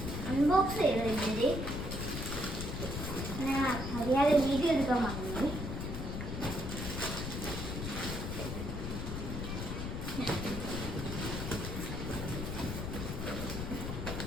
അൺബോക്സ് ചെയ്തിട്ട് ഞാൻ അറിയാതെ വീഡിയോ എടുക്കാൻ മറന്നു.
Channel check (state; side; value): noise; left; rumble, 4 dB below the sound